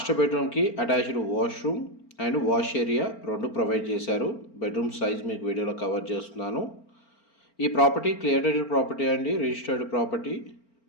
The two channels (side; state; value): right; late; 4.4 ms